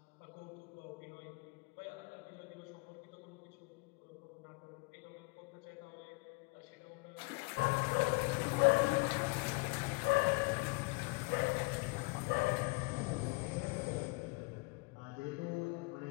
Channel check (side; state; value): right; quieter; 25.7 dB